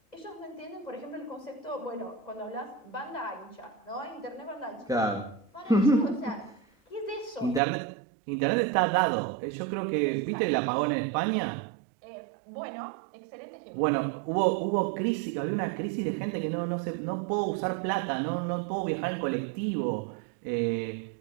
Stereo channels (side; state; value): left; drops out; at 7.6 s